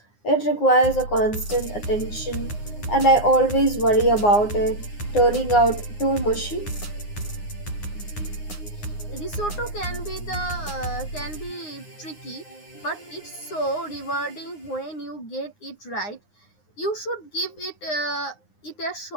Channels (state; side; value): late; right; 9.7 ms